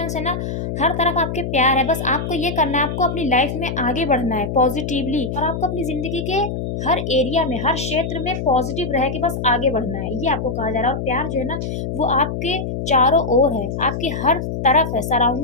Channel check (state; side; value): noise; left; hum, 4 dB below the sound